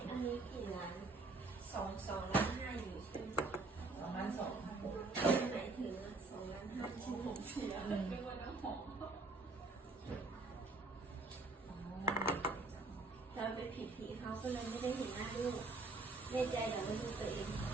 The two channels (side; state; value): left; quieter; 3.3 dB